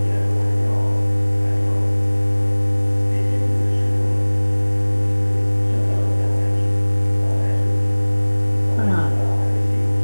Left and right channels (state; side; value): inverted; both; correlation -1.00